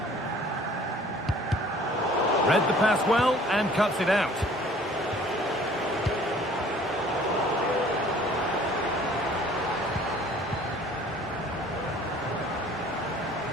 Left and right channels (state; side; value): normal; both; correlation 0.53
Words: Read the pass well and cuts it out.